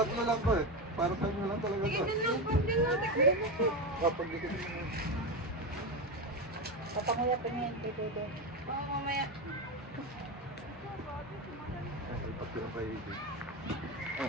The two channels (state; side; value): normal; both; correlation 0.15